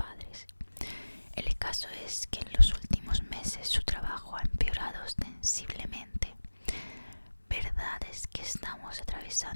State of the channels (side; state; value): both; inverted; correlation -1.00